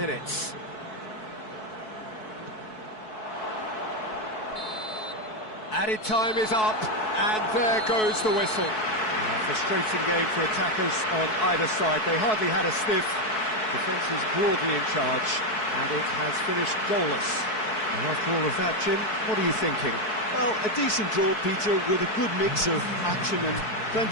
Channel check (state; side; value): late; right; 4.6 ms